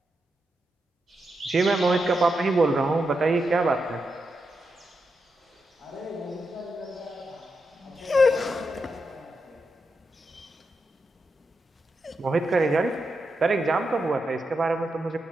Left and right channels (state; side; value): normal; both; correlation 0.86